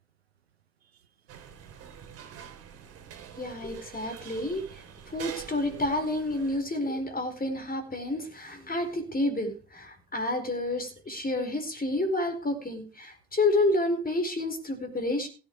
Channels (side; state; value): both; normal; correlation 0.35